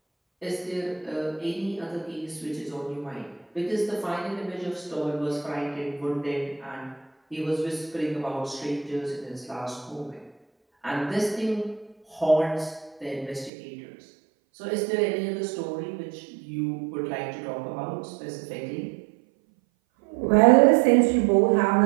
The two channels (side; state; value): left; drops out; at 13.5 s